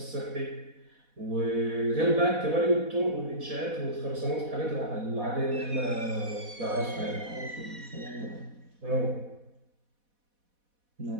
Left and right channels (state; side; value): late; left; 4.1 ms